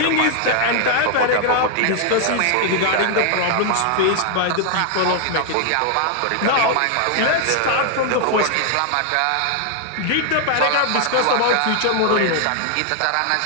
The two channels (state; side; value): different; both; correlation 0.00